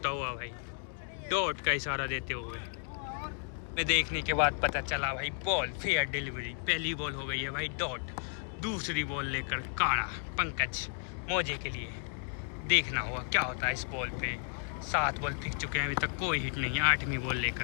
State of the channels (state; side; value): silent; right; 56 dB below the other